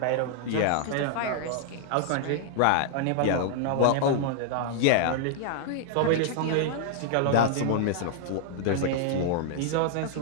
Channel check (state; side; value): different; both; correlation -0.01